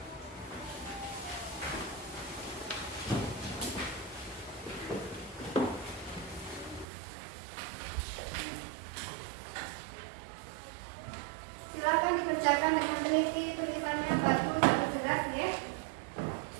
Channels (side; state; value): left; drops out; at 6.9 s